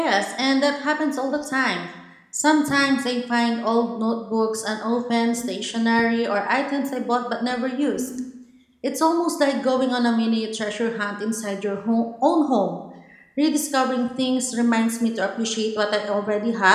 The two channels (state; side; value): identical; both; correlation 1.00